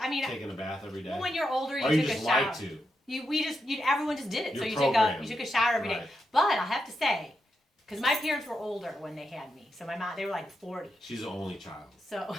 a bath every day? Well, when you're older, you or took you just a shower. like to? Everyone just did it. You're so you programmed. took a shower every day. Right. But I have to say, because my parents were older when they had me. So my mom, they were like 40. She's the only child.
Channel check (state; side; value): normal; both; correlation 0.85